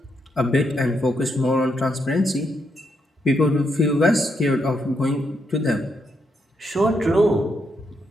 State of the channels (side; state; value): both; normal; correlation 0.79